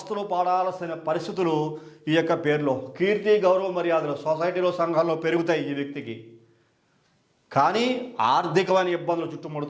పడాల్సిన పరిస్థితులు ఈ యొక్క పేరులో. కీర్తి, గౌరవ మర్యాదలు సొసైటీలో, సంఘాల్లో పెరుగుతాయి ఈ వ్యక్తికి. కానీ ఆర్థికమైన ఇబ్బందులు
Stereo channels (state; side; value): identical; both; correlation 1.00